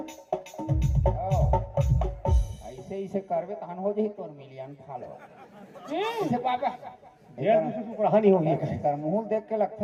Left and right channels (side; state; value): both; identical; correlation 1.00